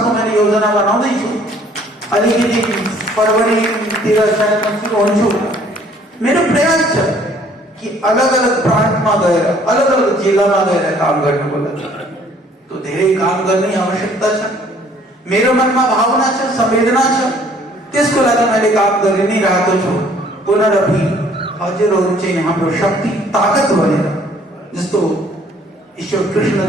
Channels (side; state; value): both; normal; correlation 0.59